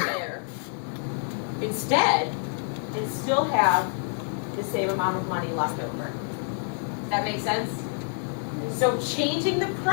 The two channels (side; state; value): right; silent; 60 dB below the other